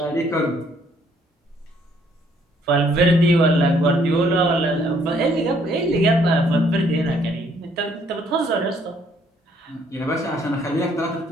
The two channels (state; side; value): normal; both; correlation 0.65